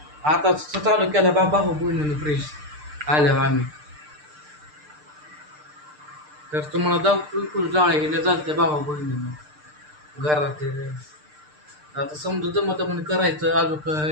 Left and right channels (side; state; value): left; late; 6.7 ms